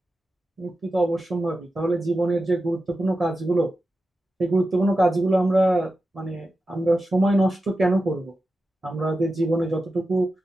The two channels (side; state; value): both; normal; correlation 0.92